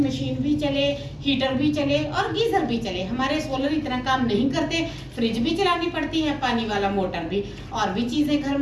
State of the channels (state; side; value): identical; both; correlation 1.00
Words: मशीन भी चले, हीटर भी चले और गीजर भी चले। हमारे सोलर इतना काम नहीं करते, फ्रिज भी चलानी पड़ती है, पानी वाला मोटर भी, और भी चीजें घर